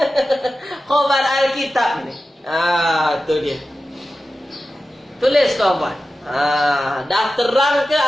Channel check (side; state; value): both; normal; correlation 0.93